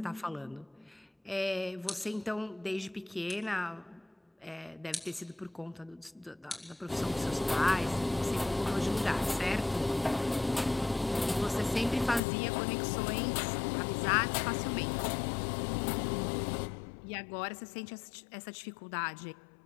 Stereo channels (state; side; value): drops out; right; at 12.2 s